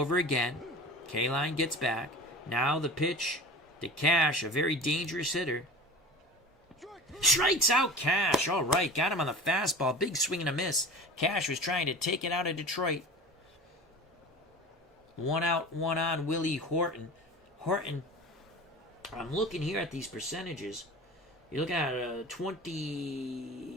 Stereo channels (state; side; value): normal; both; correlation 0.35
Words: again. K-Line gets back. Now the pitch to Cash, a very dangerous hitter. Strikes out Cash. All right, got him on the fastball. Big swing and a miss. Cash was trying to take it out of Detroit. 1 out, 1 on, Willie Horton. Horton, I'm looking here at these percentages. You're looking at a